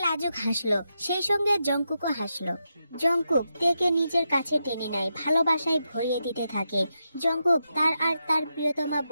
লাজুক হাসলো, সেই সঙ্গে জঙ্কুকও হাসলো। জঙ্কুক তেকে নিজের কাছে টেনে নেয়, ভালোবাসায় ভরিয়ে দিতে থাকে। জঙ্কুক তার আর তার প্রিয়তমা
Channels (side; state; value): both; inverted; correlation -0.86